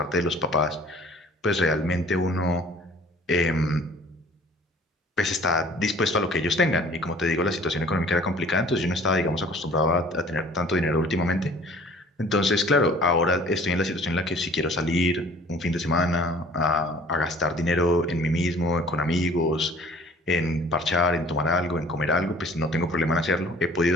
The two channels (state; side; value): normal; both; correlation 0.51